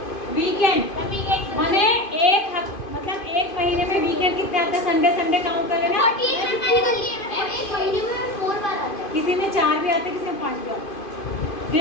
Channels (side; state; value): right; late; 2.5 ms